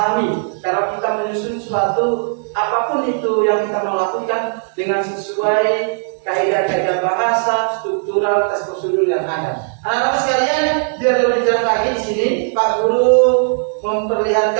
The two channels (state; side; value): silent; left; 68 dB below the other